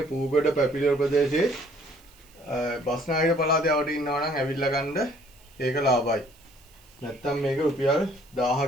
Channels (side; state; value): right; noise; hiss, 28 dB below the sound